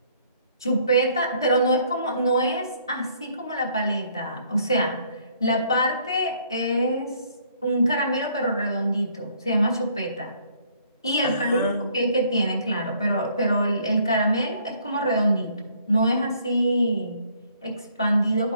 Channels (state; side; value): inverted; both; correlation -0.64